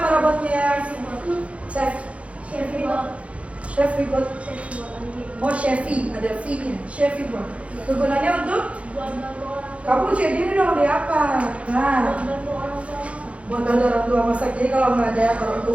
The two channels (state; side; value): late; left; 0.063 ms